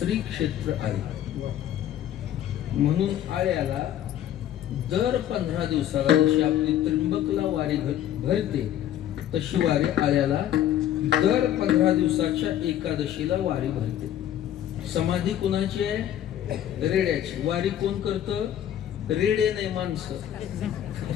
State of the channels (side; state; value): right; quieter; 11.3 dB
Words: क्षेत्र आळे म्हणून आळ्याला दर 15 दिवसाला जशी आपली त्र्यंबकला वारी भरते तशी वारी आळ्याला दर 15 दिवसाच्या एकादशीला वारी भरते. समाधी कुणाची आहे रेड्याची. वारी कोण करतं रेडे नाही माणसं.